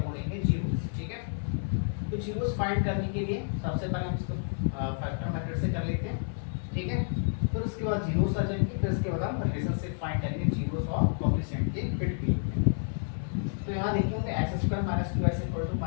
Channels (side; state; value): right; silent; digital silence